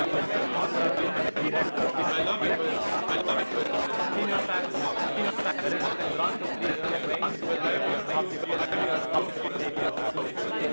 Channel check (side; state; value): both; inverted; correlation -1.00